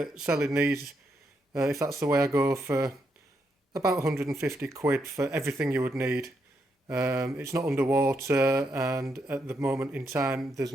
selling these, if that's the way I go, for about 150 quid for everything you would need. It's not underwater, and at the moment in time there's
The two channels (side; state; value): both; normal; correlation 0.80